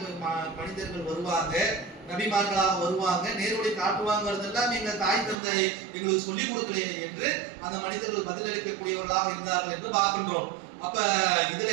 மனிதர்கள் வருவாங்க, நபிமார்களாக வருவாங்க, நேர்வழி காட்டுவாங்கிறதெல்லாம் எங்க தாய் தந்தை எங்களுக்கு சொல்லிக் கொடுக்கலையே என்று அந்த மனிதர்கள் பதிலளிக்கக்கூடியவர்களாக இருந்தார்கள் என்று பார்க்கின்றோம். அப்ப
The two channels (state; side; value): drops out; left; at 5.4 s